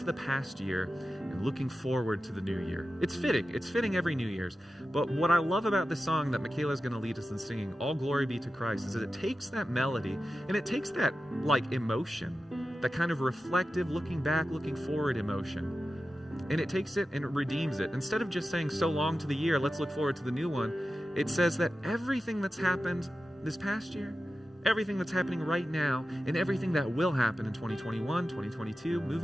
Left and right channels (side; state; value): both; normal; correlation 0.93